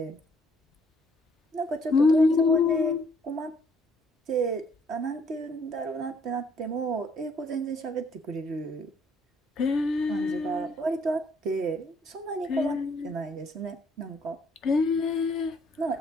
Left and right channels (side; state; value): both; normal; correlation 0.66